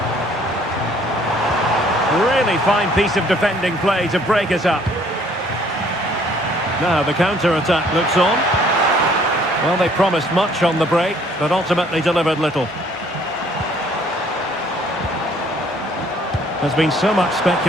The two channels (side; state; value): both; normal; correlation 0.60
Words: Really fine piece of defending play to break us up. Now the counter-attack looks on. Well, they promised much on the break, but ultimately delivered little. There's been so much